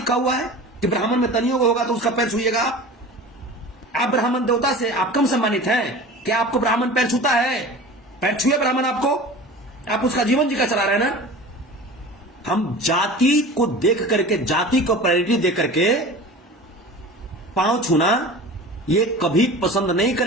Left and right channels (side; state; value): both; normal; correlation 0.37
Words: हुआ है कि ब्राह्मण में तनियोग होगा तो उसका पैर छूइएगा आप ब्राह्मण देवता से आप कम सम्मानित हैं? क्या आपको ब्राह्मण पैर छूता है? पैर छुए ब्राह्मण आपको, आप उसका जीवन जी का चला रहे हैं ना। हम जाति को देख करके, जाति को प्रायोरिटी दे करके पांव छूना ये कभी पसंद नहीं